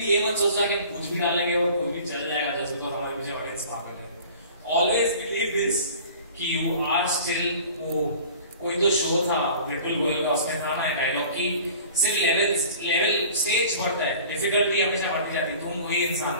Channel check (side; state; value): both; inverted; correlation -0.44